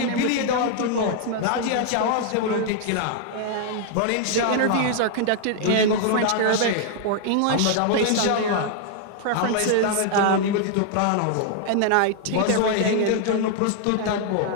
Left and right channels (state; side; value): different; both; correlation 0.00